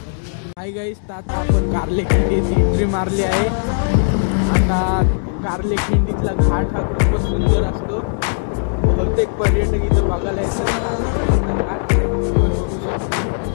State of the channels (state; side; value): silent; right; digital silence